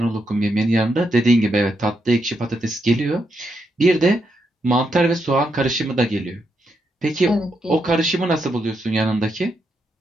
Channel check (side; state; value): both; normal; correlation 0.81